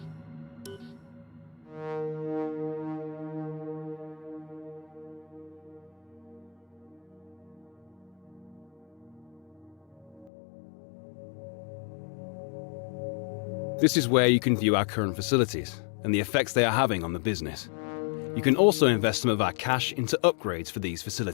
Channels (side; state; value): right; drops out; at 10.3 s